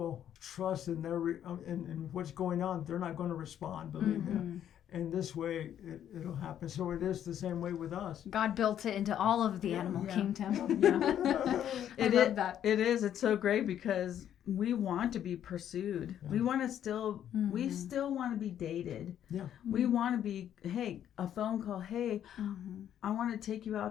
trust in in what's going on, they're not going to respond. Believe me. And this way, it'll happen. So it is the same way with us. God built it into all of the animal kingdom. I love that. It is. It's so great because we want to be pursued. We want to still, we still want to be dated. Yeah. We want to be, hey, a phone call. Hey, I want to take you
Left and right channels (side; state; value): right; quieter; 10.2 dB